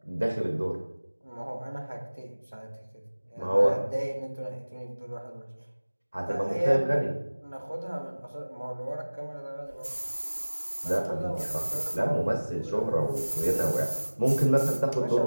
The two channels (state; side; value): inverted; both; correlation -1.00